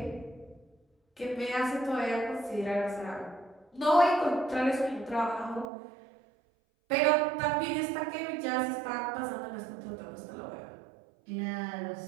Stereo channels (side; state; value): left; drops out; at 5.7 s